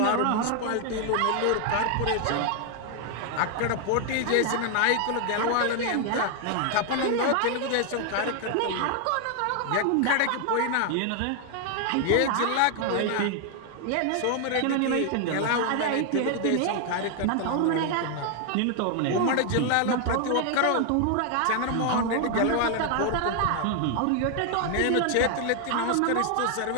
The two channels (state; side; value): different; both; correlation 0.00